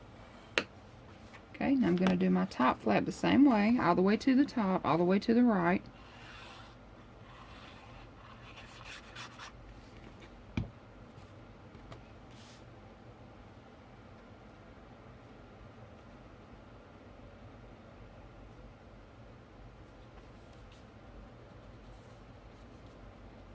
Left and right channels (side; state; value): both; identical; correlation 1.00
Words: Okay, now I'm going to do my top flap the same way, all the way to the top, all the way to the right.